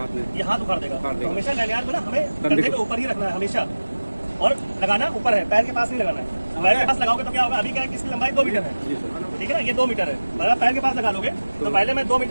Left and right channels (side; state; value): both; inverted; correlation -1.00